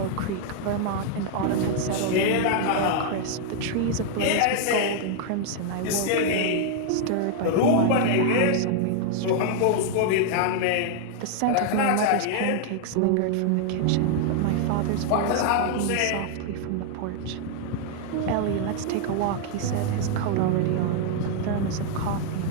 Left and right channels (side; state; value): both; different; correlation 0.00